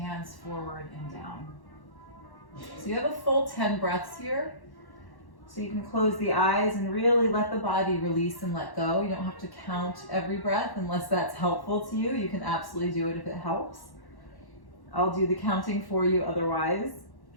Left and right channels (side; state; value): right; late; 1.1 ms